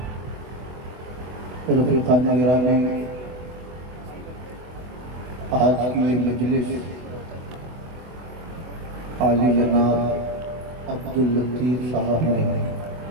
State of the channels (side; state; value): left; late; 24 ms